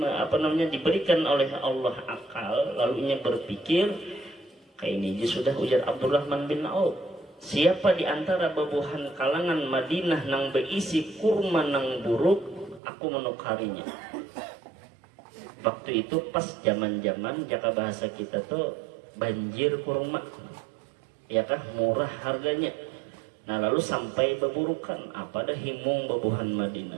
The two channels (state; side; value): drops out; left; at 12.8 s